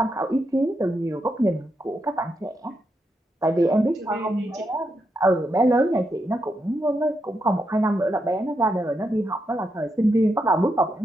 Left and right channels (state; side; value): normal; both; correlation 0.83